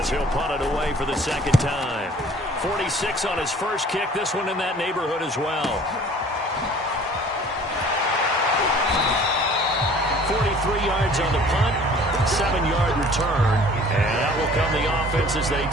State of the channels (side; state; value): both; normal; correlation 0.50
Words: he'll punt it away for the 2nd time. 46 on his first kick, this one in that neighborhood as well. 43 yards on the punt, 7-yard return, and that will come the offense as they